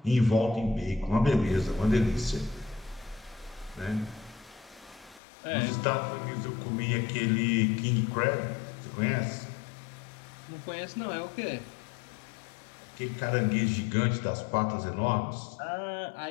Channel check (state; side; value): drops out; right; at 5.2 s